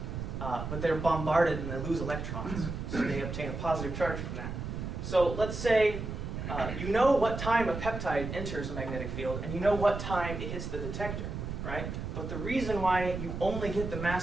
But they're bombarded and they lose electrons, so they obtain a positive charge from that. So let's say you know what time a peptide enters a magnetic field, and you know what time it hits the detector, right? But the reason why you only get the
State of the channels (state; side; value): noise; right; rumble, 5 dB below the sound